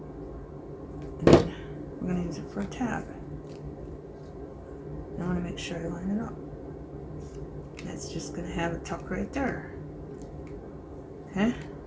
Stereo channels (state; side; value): identical; both; correlation 1.00